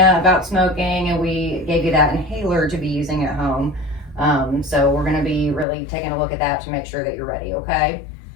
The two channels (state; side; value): drops out; right; at 5.7 s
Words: smoking, and we gave you that inhaler to be using at home. So we're going to be really taking a look at that to make sure that you're ready, okay?